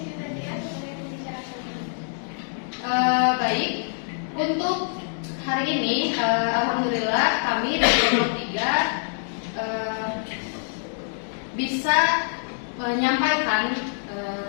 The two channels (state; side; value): silent; right; digital silence